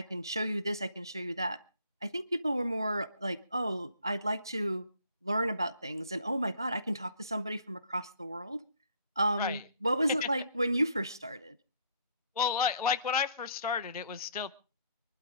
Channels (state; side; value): inverted; both; correlation -0.62